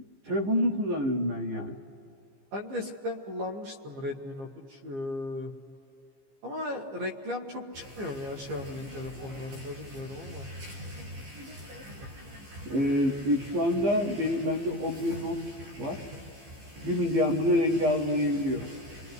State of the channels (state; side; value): late; left; 15 ms